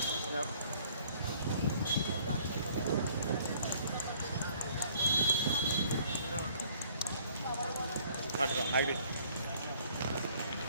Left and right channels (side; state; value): both; inverted; correlation -0.58